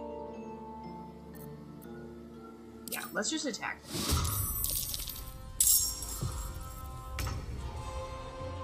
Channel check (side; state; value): both; identical; correlation 1.00